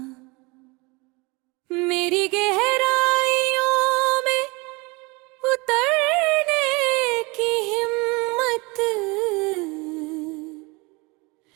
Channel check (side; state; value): left; quieter; 26.4 dB